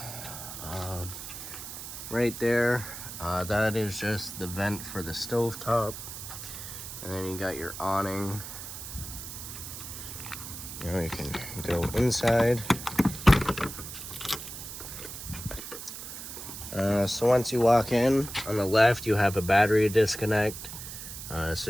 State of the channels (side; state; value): right; noise; hiss, 10 dB below the sound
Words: right there, that is just the vent for the stovetop. And then you got your awning. Now you can go inside. So once you walk in, on the left you have a battery disconnect,